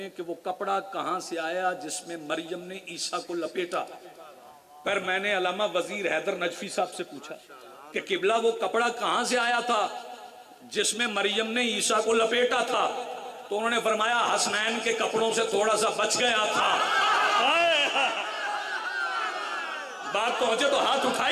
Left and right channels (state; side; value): identical; both; correlation 1.00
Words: کہ وہ کپڑا کہاں سے آیا جس میں مریم نے عیسیٰ کو لپیٹا. پر میں نے علامہ وزیر حیدر نجفی صاحب سے پوچھا کہ قبلہ وہ کپڑا کہاں سے آیا تھا جس میں مریم نے عیسیٰ کو لپیٹا تھا؟ تو انہوں نے فرمایا حسنین کے کپڑوں سے تھوڑا سا بچ گیا تھا. بات پہنچے تو ہاتھ